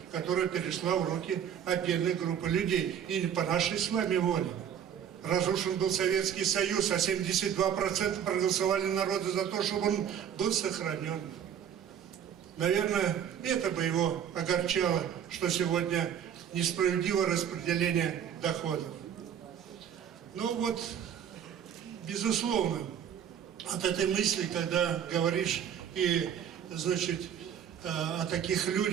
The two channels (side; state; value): left; quieter; 8.8 dB